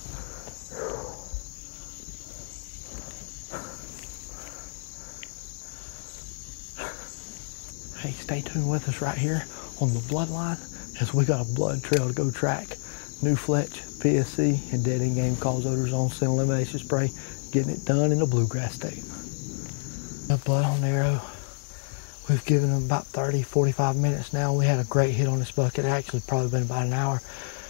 Hey, stay tuned with us right here on the bloodline as we got a blood trail to go track. New Fletch, PSC, and dead end game calls Odor Zone scent elimination spray. Getting it done in the bluegrass state. The blood on the arrow. We've given them about 30, 45 minutes now. We had a great hit on this buck. It actually probably been about an hour.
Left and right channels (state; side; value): silent; right; digital silence